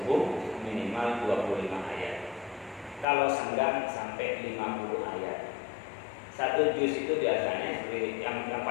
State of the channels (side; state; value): right; drops out; at 3.1 s